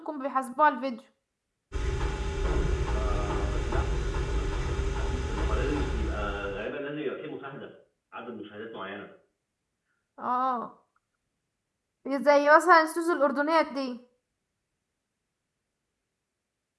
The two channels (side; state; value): both; identical; correlation 1.00